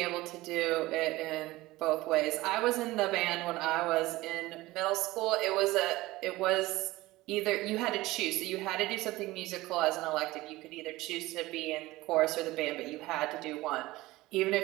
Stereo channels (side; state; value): left; quieter; 18.8 dB